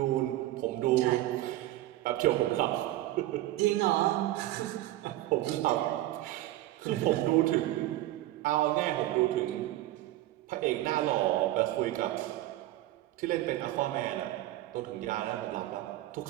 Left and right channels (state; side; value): quieter; left; 15.7 dB